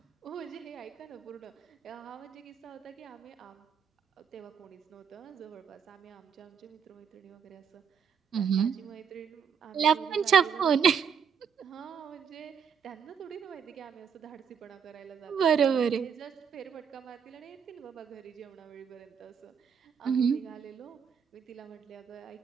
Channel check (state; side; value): quieter; left; 7.0 dB